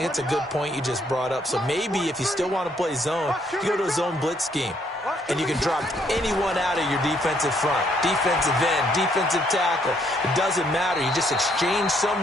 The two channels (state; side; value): normal; both; correlation 0.69